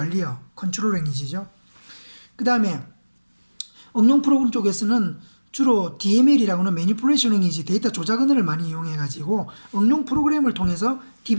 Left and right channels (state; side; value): inverted; both; correlation -1.00